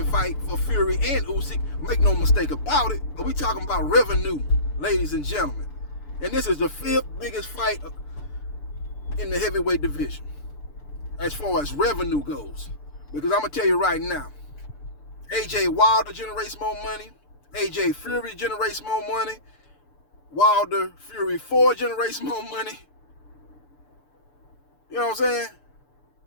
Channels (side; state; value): right; late; 6.8 ms